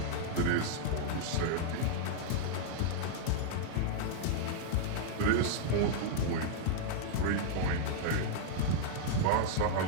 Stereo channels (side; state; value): both; different; correlation -0.01